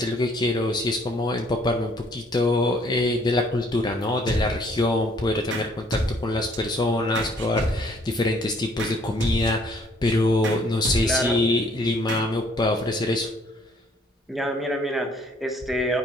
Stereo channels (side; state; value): both; normal; correlation 0.62